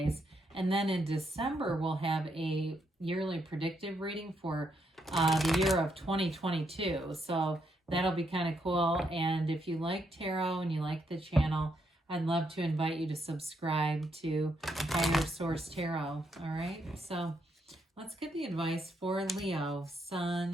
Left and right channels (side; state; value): both; normal; correlation 0.77